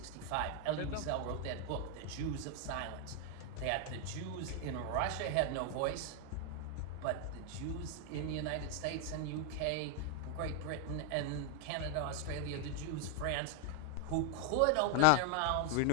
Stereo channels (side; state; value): both; different; correlation 0.00